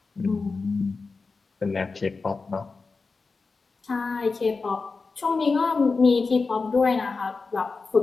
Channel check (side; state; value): right; quieter; 4.2 dB